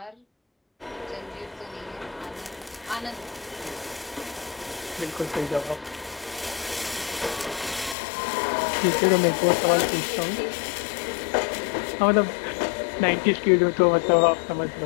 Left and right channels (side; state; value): right; drops out; at 8.0 s